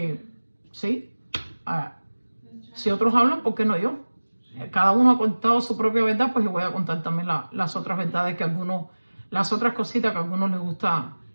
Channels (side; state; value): both; inverted; correlation -1.00